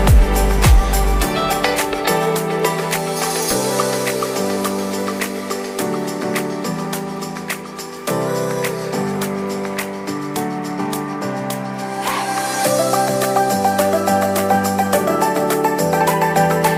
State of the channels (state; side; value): identical; both; correlation 1.00